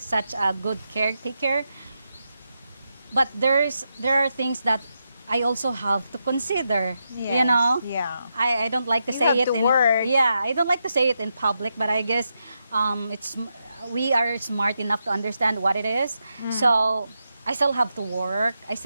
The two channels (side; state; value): both; inverted; correlation -0.85